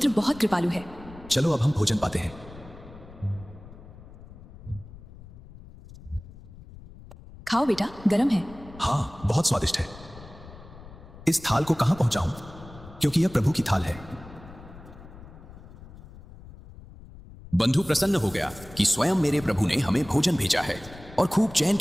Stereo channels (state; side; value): noise; left; rumble, 18 dB below the sound